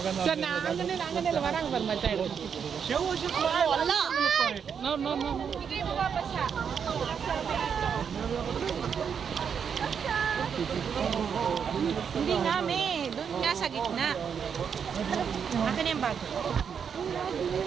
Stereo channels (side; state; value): left; quieter; 7.1 dB